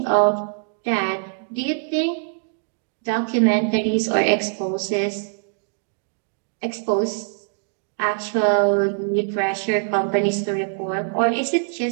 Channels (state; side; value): silent; left; digital silence